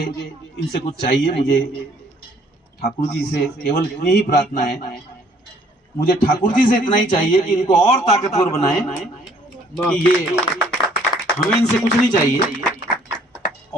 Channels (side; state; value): both; normal; correlation 0.60